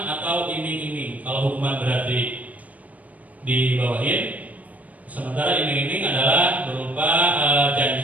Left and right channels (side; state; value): left; late; 0.072 ms